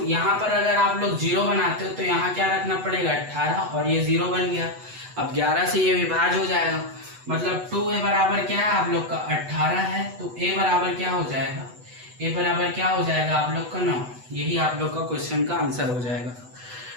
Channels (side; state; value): left; late; 8.0 ms